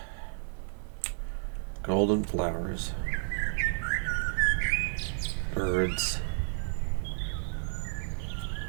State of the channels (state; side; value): silent; left; digital silence